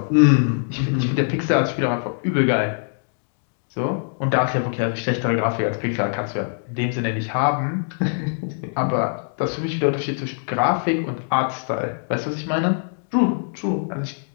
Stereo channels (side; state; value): right; silent; digital silence